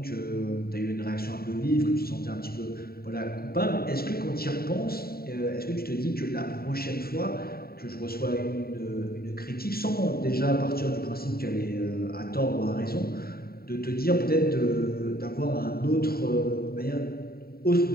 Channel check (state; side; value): late; right; 0.44 ms